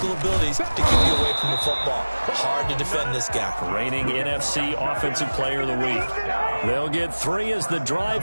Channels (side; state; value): both; inverted; correlation -1.00